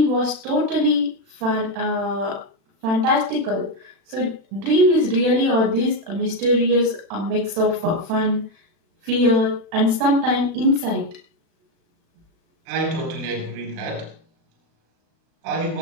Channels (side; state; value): left; late; 36 ms